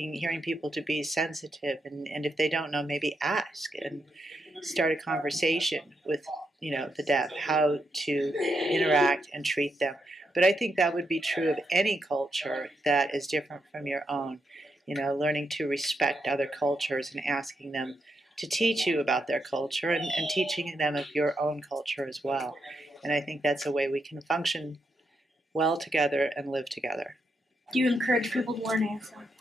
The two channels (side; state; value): both; normal; correlation 0.82